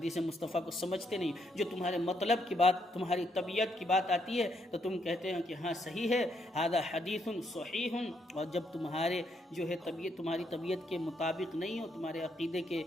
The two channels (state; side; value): normal; both; correlation 0.75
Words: مصطفیٰ کو سمجھتے نہیں۔ جو تمہارے مطلب کی بات، تمہاری طبیعت کی بات آتی ہے تو تم کہتے ہیں کہ ہاں صحیح ہے، ھذا حدیث صحیح، اور جب تمہارے جو ہے تمہاری طبیعت کے مطابق نہیں ہو، تمہارے عقیدے کے